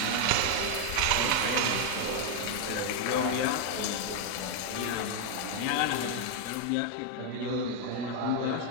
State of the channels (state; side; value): different; both; correlation 0.00